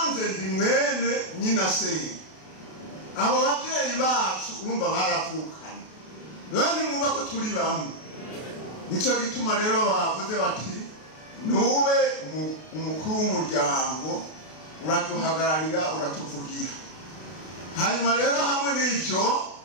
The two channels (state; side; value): late; right; 32 ms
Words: ndi mwene nyina se. Abo babyeyi bacu urumva baravukanye, none mwumva ko turi bamwe. Nico gituma rero bavuze bati nube umukuru w'umuryango, uratuhagararira, uratuvugira. Hanyuma rero hamwe n'ibyo